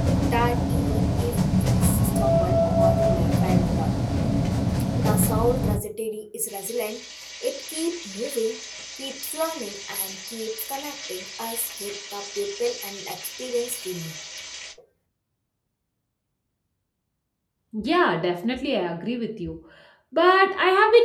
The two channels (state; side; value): identical; both; correlation 1.00